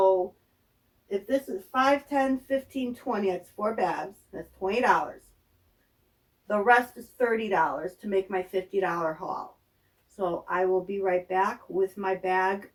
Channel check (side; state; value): both; identical; correlation 1.00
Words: if this is 5, 10, 15, 20, it's 4 bags. That's $20. The rest is $30 to make my $50 haul. So I will be right back with my bag